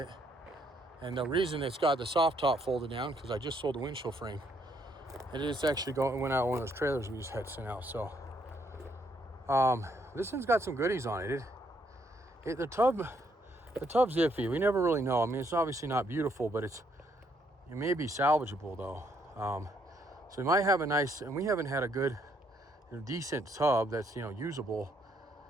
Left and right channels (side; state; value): both; normal; correlation 0.71